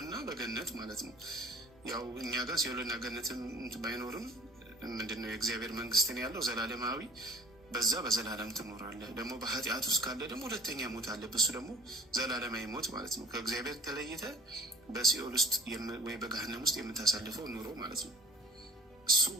በገነት ማለት ነው። ያው እኛ ጋር ሲኦልና ገነትም ባይኖርም ምንድነው የእግዚአብሔር መንግስትን ያለው ዘላለማዊ፣ በዛ በዘላለም ትኖራለህ። ደግሞ በኃጢአት ውስጥ ካለ ደግሞ ሁለተኛ ሞት አለ። እሱ ደግሞ ዘላለማዊ ሞት ማለት ነው። ከእግዚአብሔር ተለይተ በሲኦል ውስጥ ወይ በገሃነም ውስጥ የምታሳልፈው ኑሮ ማለት ነው።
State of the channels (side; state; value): both; normal; correlation 0.47